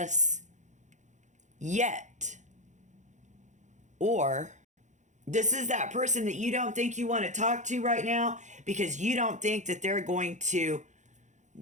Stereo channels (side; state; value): left; late; 0.35 ms